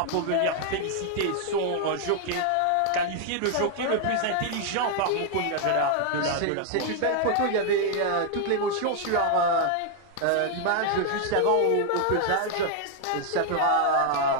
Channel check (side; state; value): both; different; correlation 0.00